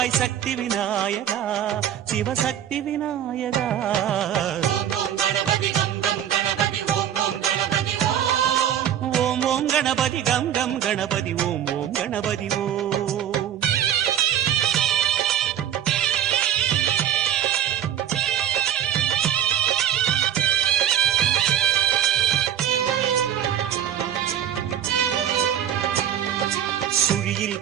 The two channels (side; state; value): left; quieter; 10.2 dB